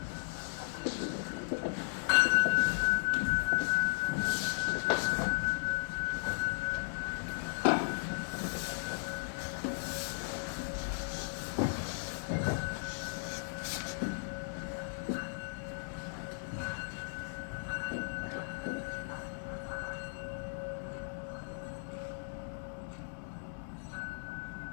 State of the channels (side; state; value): right; silent; digital silence